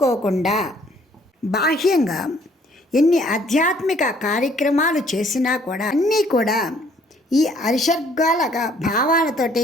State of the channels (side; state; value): both; normal; correlation 0.61